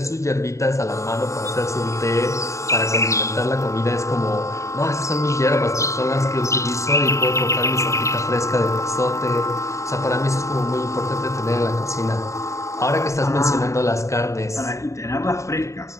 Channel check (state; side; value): late; right; 0.15 ms